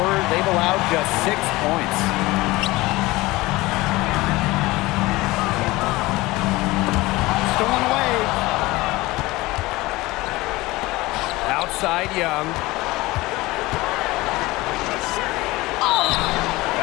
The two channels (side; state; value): right; quieter; 20.3 dB